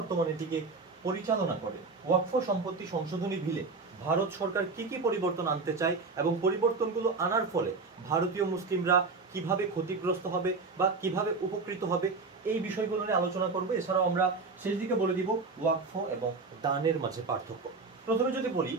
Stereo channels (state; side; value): quieter; left; 4.1 dB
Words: এটিকে পরিচালনা করে। ওয়াকফ সম্পত্তি সংশোধনী বিলে ভারত সরকার কি কি পরিবর্তন আনতে চায় এবং পরিবর্তনগুলো আনার ফলে ভারতীয় মুসলিমরা কিভাবে ক্ষতিগ্রস্ত হবে বা কিভাবে উপকৃত হবে, এই বিষয়গুলো নিয়ে আলোচনা করবো। এছাড়াও আমরা শেষ দিকে বলে দিব ওয়াকফ এবং দানের মাঝে পার্থক্য। প্রথমে যদি বলি,